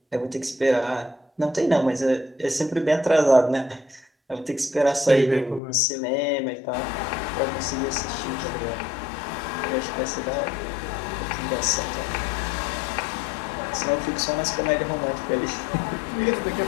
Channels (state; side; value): drops out; right; at 5.6 s